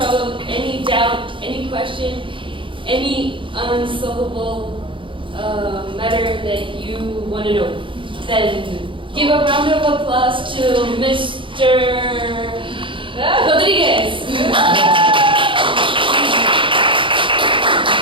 any doubt, any question, any unsolvable matter that you want to know. Then give a round of applause to Mr. Rodriguez.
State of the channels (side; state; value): left; late; 0.25 ms